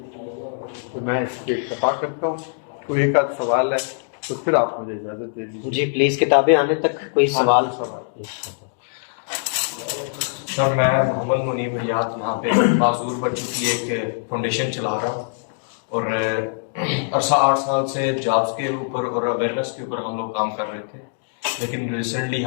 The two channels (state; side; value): silent; right; digital silence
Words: تو میں اس پہ اکتفا کرتا ہوں. کوئی ایک آدھ سوال ہے تو پھر آپ مجھے اجازت دے دیجیے. جی پلیز, کتابیں آنے تک کوئی سوال. سر میں محمد منیب ریاض یہاں پہ معذور بچوں کی ایک فاؤنڈیشن چلا رہا ہوں, اور عرصہ 8 سال سے جابس کے اوپر اور اویئرنیس کے اوپر ہم لوگ کام کر رہے تھے. لیکن ریسنٹلی